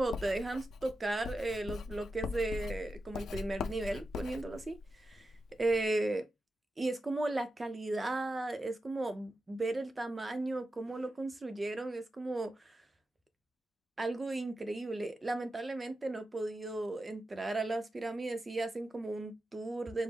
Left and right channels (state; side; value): normal; both; correlation 0.90